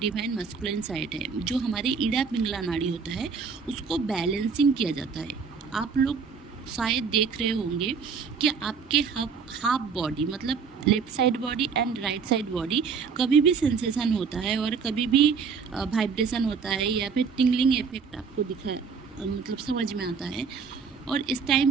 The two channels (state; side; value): quieter; left; 5.7 dB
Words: मस्कुलिन साइड है, जो हमारे ईड़ा पिंगला नाड़ी होता है, उसको बैलेंसिंग किया जाता है। आप लोग शायद देख रहे होंगे कि आपके हाफ बॉडी, मतलब left side body and right side body, कभी भी सेंसेशन होता है और कभी भी वाइब्रेशन होता है, या फिर टिंगलिंग इफेक्ट आपको मतलब समझ में आता है। और इस